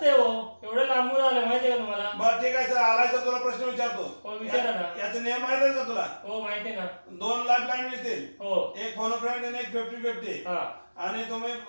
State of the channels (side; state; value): both; inverted; correlation -1.00